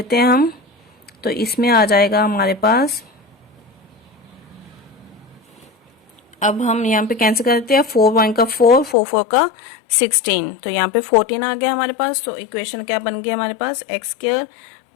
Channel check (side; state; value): right; drops out; at 9.0 s